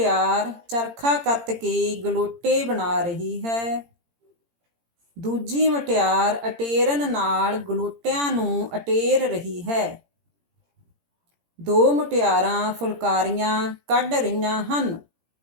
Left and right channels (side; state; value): left; late; 17 ms